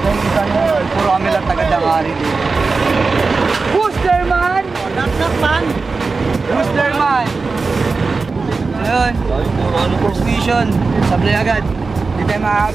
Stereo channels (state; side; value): quieter; left; 4.2 dB